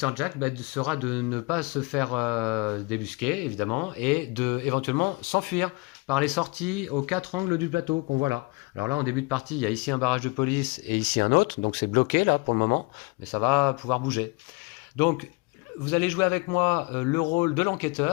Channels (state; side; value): quieter; right; 27.1 dB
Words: Jack sera de ne pas se faire débusquer, évidemment, et de éventuellement s'enfuir par les sorties aux 4 angles du plateau qu'on voit là. Alors là, en début de partie, il y a ici un barrage de police et ici un autre, donc c'est bloqué là pour le moment, mais ça va pouvoir bouger. Donc vous allez jouer avec moi le rôle de